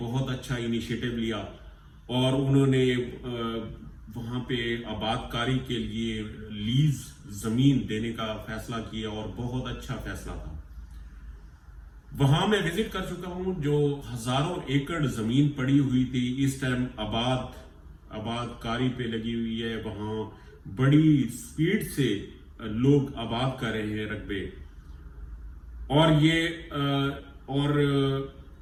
अच्छा इनिशिएटिव लिया और उन्होंने वहाँ पे आबादकारी के लिए लीज ज़मीन देने का फैसला किया और बहुत अच्छा फैसला था। वहाँ मैं विजिट कर चुका हूँ, जो हजारों एकड़ ज़मीन पड़ी हुई थी इस टाइम आबादकारी पे लगी हुई है। वहाँ बड़ी स्पीड से लोग आबाद कर रहे हैं रकबे और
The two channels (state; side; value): identical; both; correlation 1.00